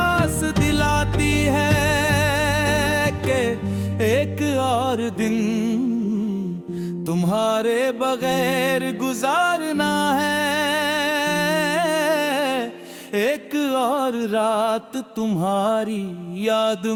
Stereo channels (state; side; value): identical; both; correlation 1.00